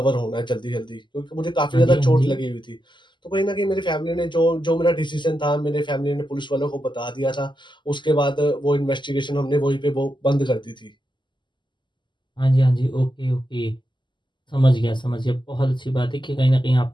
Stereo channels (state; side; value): late; right; 0.22 ms